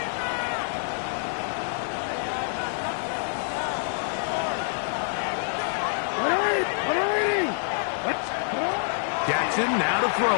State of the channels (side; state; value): right; silent; digital silence